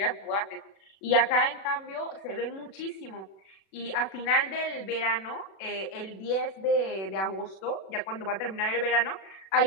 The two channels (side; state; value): right; late; 36 ms